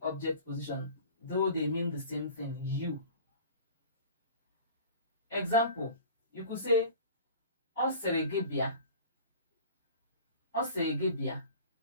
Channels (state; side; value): inverted; both; correlation -0.41